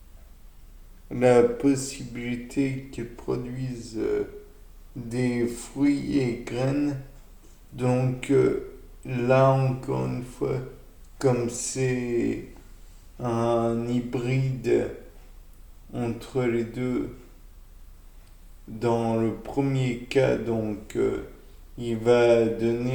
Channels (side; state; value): both; identical; correlation 1.00